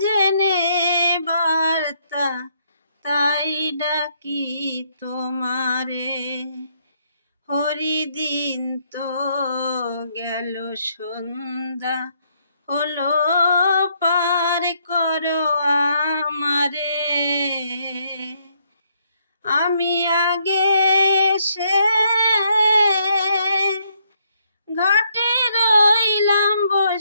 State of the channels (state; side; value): inverted; both; correlation -0.72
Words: জেনে বার্তা, তাই ডাকি তোমারে। হরিদিন তো গেল, সন্ধ্যা হলো, পার করো আমারে। আমি আগে এসে ঘাটে রইলাম